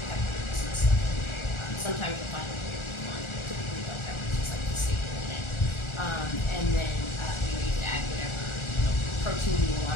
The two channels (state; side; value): late; right; 1.4 ms